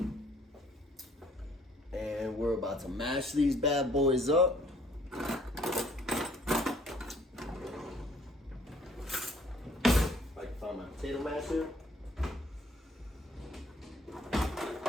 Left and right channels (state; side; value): normal; both; correlation 0.60